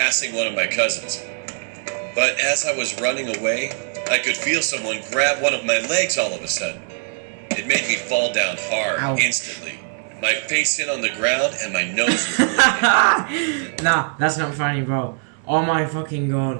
one of my cousins. But as I was running away, I could feel someone grab one of my legs all of a sudden. It made me fall down hard. Ow. Instantly. My face hit on the ground and my nose was bleeding. Nah, that's not funny, bro. Oh my fucking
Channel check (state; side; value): silent; left; 64 dB below the other